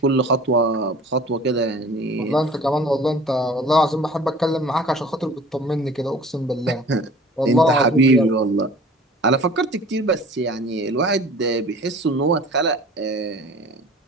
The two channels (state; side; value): normal; both; correlation 0.45